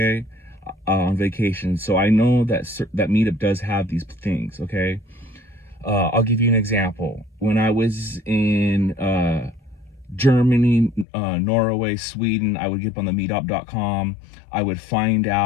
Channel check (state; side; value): drops out; right; at 11.1 s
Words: on vacation, so I know that that meetup does have these things. Okay, I'll give you an example. When I was in Germany, Norway, Sweden, I would get up on the meetup.com. I would find